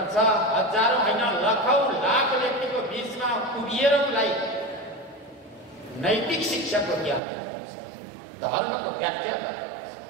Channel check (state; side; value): drops out; left; at 7.2 s